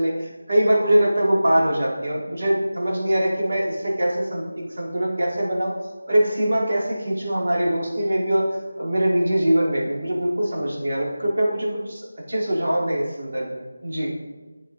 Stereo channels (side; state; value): both; inverted; correlation -0.97